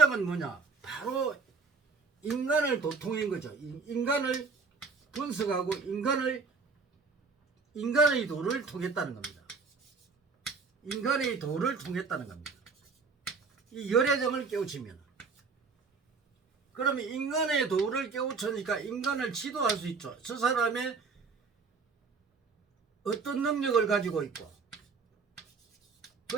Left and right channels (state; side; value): quieter; left; 4.7 dB